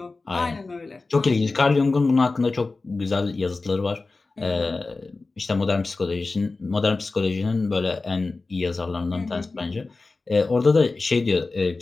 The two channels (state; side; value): quieter; right; 3.6 dB